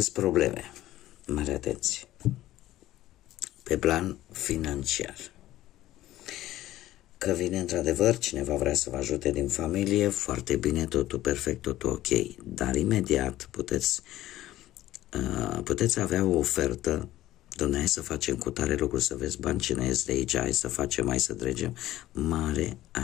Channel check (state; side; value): quieter; right; 14.9 dB